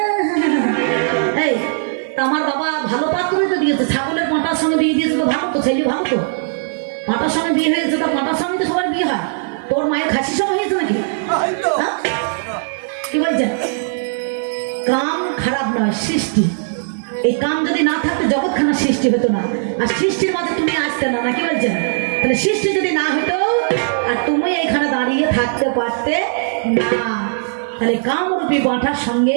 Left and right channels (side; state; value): left; silent; digital silence